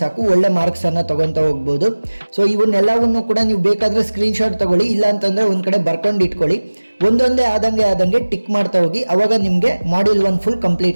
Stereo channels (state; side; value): inverted; both; correlation -1.00